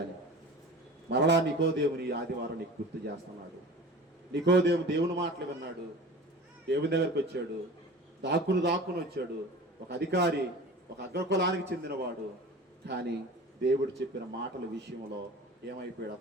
మరలా నికోదేవుని ఆదివారం నీకు గుర్తు చేస్తున్నాడు. నికోదేవు దేవుని మాటలు విన్నాడు, దేవుని దగ్గరికి వచ్చాడు, దాక్కుని వచ్చాడు. ఒక అధికారి, ఒక అగ్రకులానికి చెందినవాడు, కానీ దేవుడు చెప్పిన మాటల విషయంలో ఏమైపోయాడు?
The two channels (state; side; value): normal; both; correlation 0.38